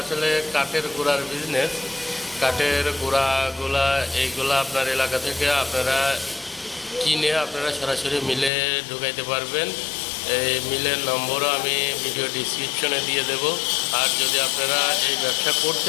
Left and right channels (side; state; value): right; drops out; at 8.5 s